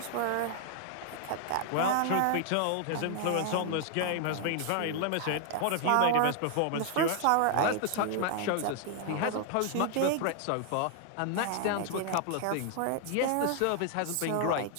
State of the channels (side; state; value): both; different; correlation 0.00